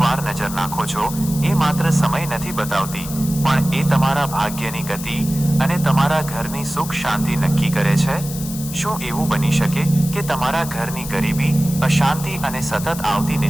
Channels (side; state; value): left; noise; hiss, 11 dB below the sound